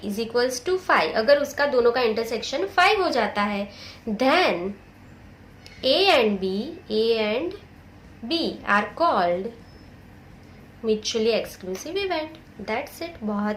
is equals to 5, अगर उसका दोनों का इंटरसेक्शन 5 हो जाता है, then A and B are called mutually exclusive event. That's it,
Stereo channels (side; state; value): both; identical; correlation 1.00